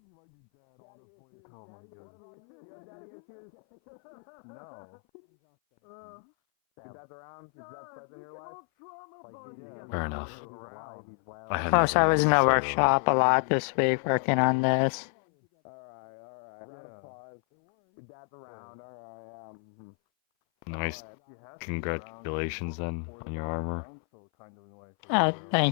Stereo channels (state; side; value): silent; right; 57 dB below the other